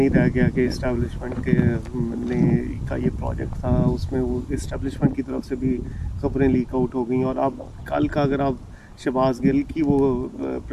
रह गया कि इस्टेब्लिशमेंट के ने का ये प्रोजेक्ट था, उसमें वो इस्टेब्लिशमेंट की तरफ से भी खबरें लीक आउट हो गई। और अब कल का अगर आप शहबाज गिल की वो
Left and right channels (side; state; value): both; identical; correlation 1.00